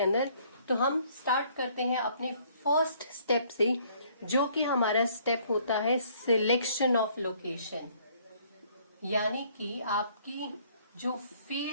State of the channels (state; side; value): inverted; both; correlation -0.62